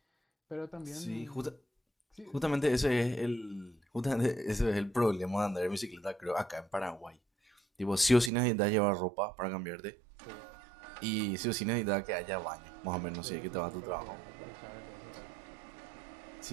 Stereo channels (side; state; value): left; drops out; at 8.3 s